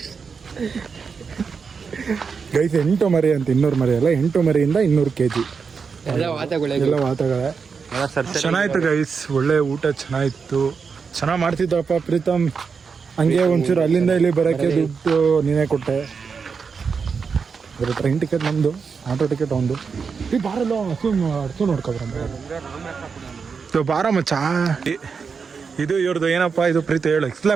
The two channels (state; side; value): quieter; left; 5.6 dB